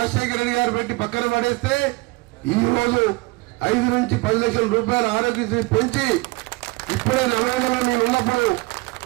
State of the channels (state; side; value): quieter; left; 24.1 dB